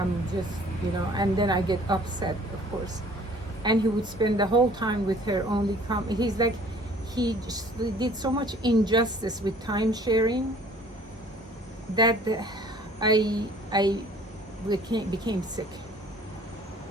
just, you know, and then I get upset, of course. And he would spend the whole time with her, only he's like, he just did so much injustice with time sharing that I became sick.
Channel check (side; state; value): both; normal; correlation 0.53